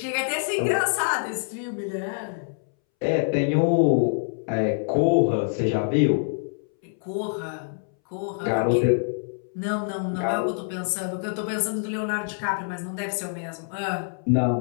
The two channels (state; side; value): silent; right; 61 dB below the other